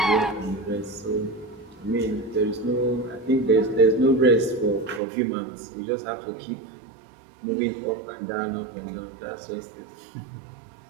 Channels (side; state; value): left; drops out; at 5.0 s